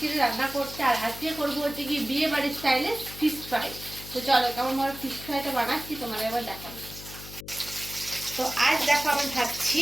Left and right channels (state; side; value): noise; left; hum, 14 dB below the sound